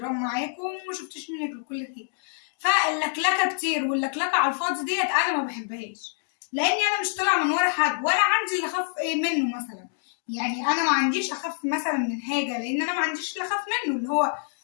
معاكم وما شفتش منك الكل خير. فاللكلكة كتير واللكلكة على الفاضي ديت انا ما بحبهاش، لاني انا مش طالعة من ورا حد ولا عندي اللي اخاف منه مثلا. يعني انا ما عنديش اخاف مثلا من حاجة، لان انا ما عنديش اللي اخاف منه، اللي هو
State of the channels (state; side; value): silent; right; digital silence